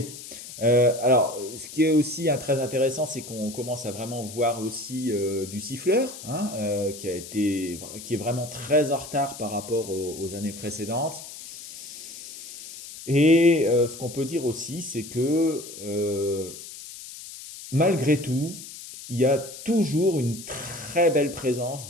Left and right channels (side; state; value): left; noise; hiss, 13 dB below the sound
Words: Alors, ce qui est aussi très intéressant, c'est qu'on commence à vraiment voir aussi du siffleur, hein, qui est vraiment très en retard par rapport aux années précédentes. Et ce qu'on peut dire aussi, c'est que malgré tout, il y a toujours une très belle présence